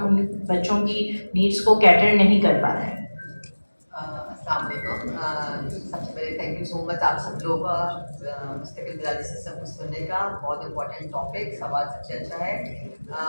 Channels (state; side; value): inverted; both; correlation -1.00